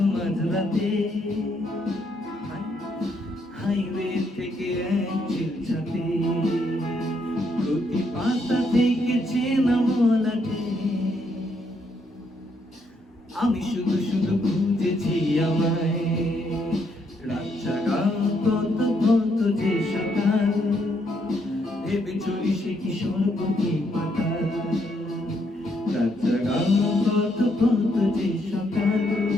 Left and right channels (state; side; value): normal; both; correlation 0.74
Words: মাঝরাতে হাইওয়ে থেকে এক চিলচাতে, প্রতি পাতা থেকে চেনা মলাটে আমি শুধু শুধু খুঁজেছি আমায়। রাত জাগা কত কত যে সকাল, ভেবে চলি সে কি স্বর্গ কি পাতাল। রাত জাগা কত কত যে সকাল,